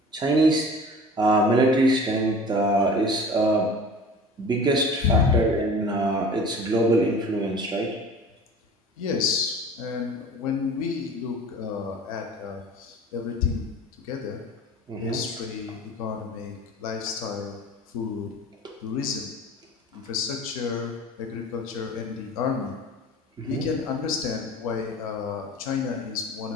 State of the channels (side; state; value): both; normal; correlation 0.42